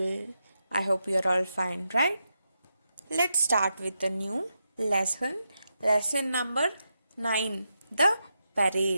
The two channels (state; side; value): inverted; both; correlation -0.86